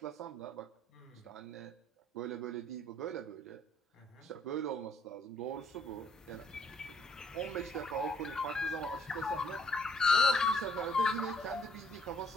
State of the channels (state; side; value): normal; both; correlation 0.65